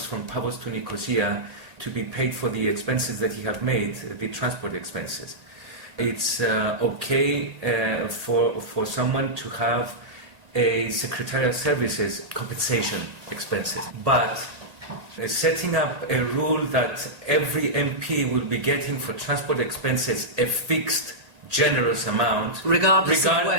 from Paphos to Nicosia to be paid for the expenses that he have made, the transport expenses. It's okay for someone to have a secretarial services compensation expenses, but setting up a rule that every MP will be getting for transport expenses a fixed generous amount, regardless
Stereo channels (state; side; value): late; left; 1.8 ms